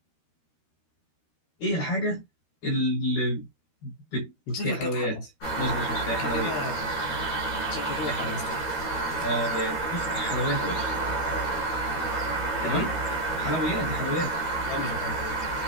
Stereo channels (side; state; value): right; late; 13 ms